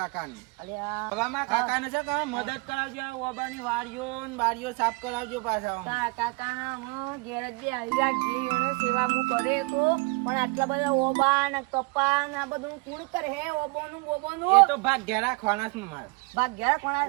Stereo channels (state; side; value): quieter; left; 28.1 dB